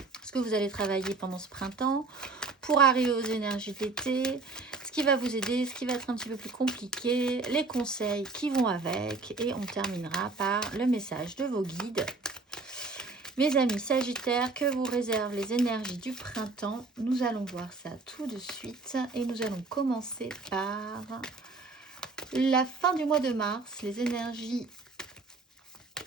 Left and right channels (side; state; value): left; quieter; 3.8 dB